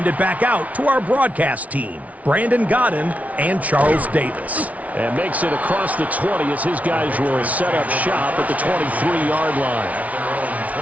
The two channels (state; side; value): late; left; 0.069 ms